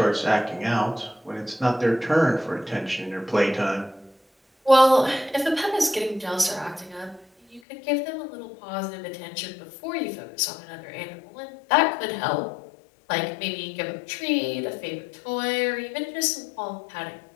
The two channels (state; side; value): drops out; right; at 7.6 s